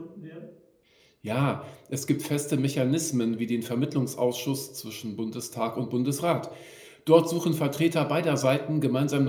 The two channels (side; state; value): both; identical; correlation 1.00